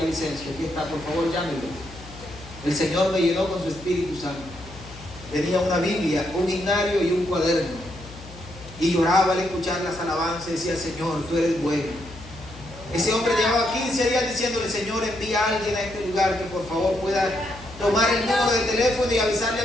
Aquí está, por favor, llámenlo. El Señor me llenó con su Espíritu Santo. Tenía una Biblia, un himnario y un cuaderno, y lloraba al escuchar las alabanzas y decía: Señor, tú eres bueno. Ese hombre llevaba 15 días diciéndole: Señor, envía a alguien a este lugar que por favor pueda tomar el número de teléfono y avisarle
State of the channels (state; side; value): noise; left; hum, 17 dB below the sound